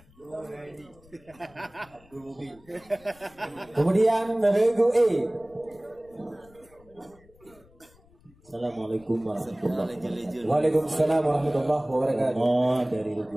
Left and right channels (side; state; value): left; noise; rumble, 28 dB below the sound